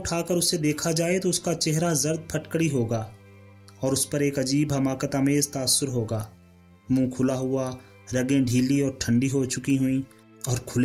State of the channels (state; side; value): identical; both; correlation 1.00